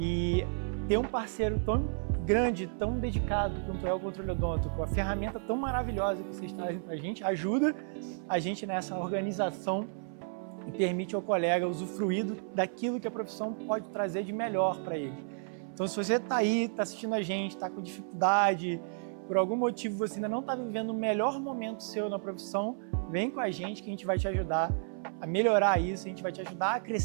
ter um parceiro tão grande, tão dedicado quanto é o Controle Odonto, com a ferramenta tão maravilhosa que vocês trazem para a gente, ajuda a gente nessa organização e permite ao colega usufruir daquilo que a profissão pode trazer de melhor para ele. Então, se você está aí, está assistindo a gente, está com dificuldade, por algum motivo você ainda não está vivendo o melhor momento seu na profissão, vem com a gente que a gente vai te ajudar a melhorar isso, a gente vai te ajudar a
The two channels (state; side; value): silent; left; 56 dB below the other